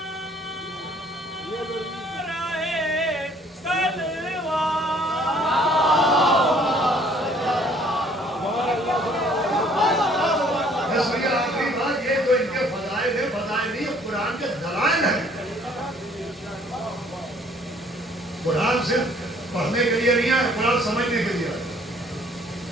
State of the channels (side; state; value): both; normal; correlation 0.59